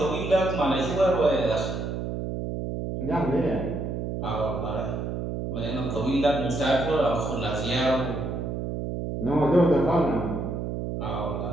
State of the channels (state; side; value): noise; right; hum, 4 dB below the sound